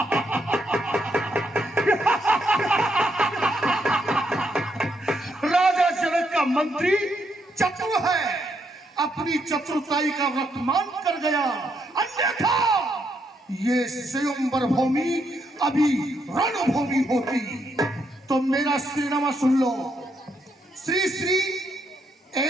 राजा जनक का मंत्री चतुर है, अपनी चतुरताई का वर्तमान कर गया, अन्यथा ये स्वयंवर भूमि अभी रणभूमि होती। तो मेरा श्रीनामा सुन लो। श्री श्री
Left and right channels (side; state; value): both; normal; correlation 0.77